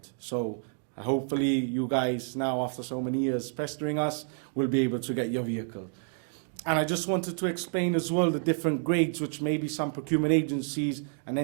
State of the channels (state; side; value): silent; left; 58 dB below the other